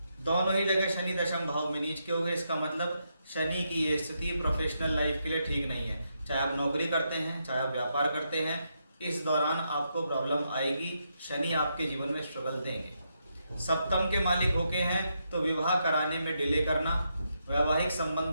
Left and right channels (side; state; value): both; inverted; correlation -0.81